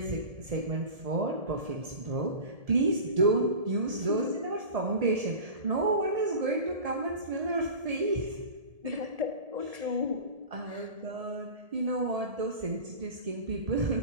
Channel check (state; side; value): late; left; 1.7 ms